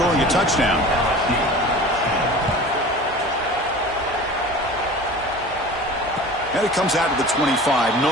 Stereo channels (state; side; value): normal; both; correlation 0.39